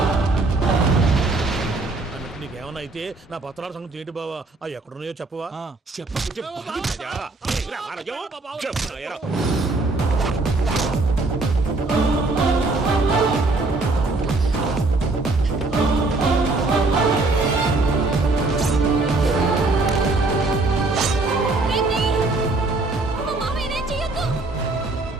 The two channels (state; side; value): quieter; left; 3.3 dB